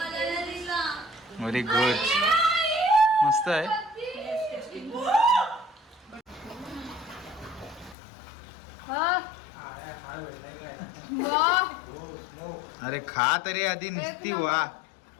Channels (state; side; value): drops out; right; at 8.0 s